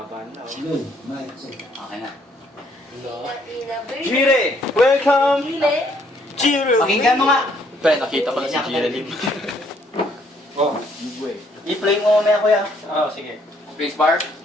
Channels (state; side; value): normal; both; correlation 0.67